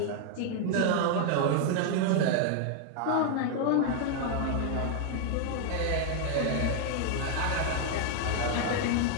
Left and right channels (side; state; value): both; different; correlation 0.00